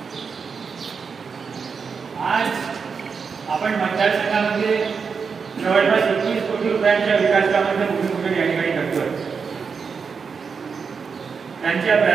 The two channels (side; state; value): left; quieter; 5.7 dB